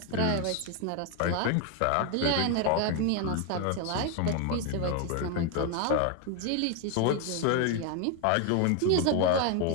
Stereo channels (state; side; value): different; both; correlation 0.01